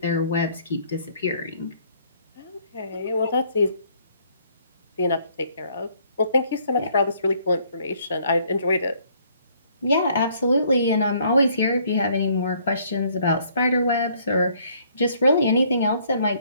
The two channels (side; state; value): both; inverted; correlation -0.64